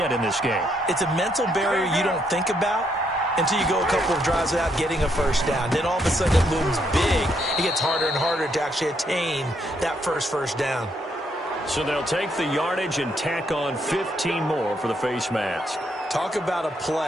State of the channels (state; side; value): normal; both; correlation 0.74